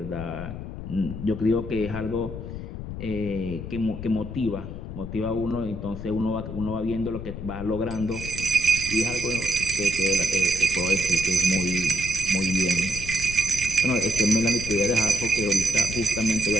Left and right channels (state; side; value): noise; left; rumble, 8 dB below the sound